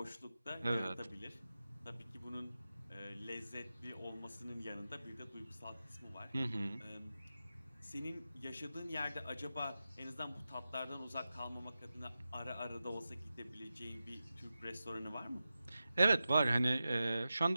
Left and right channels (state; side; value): inverted; both; correlation -0.93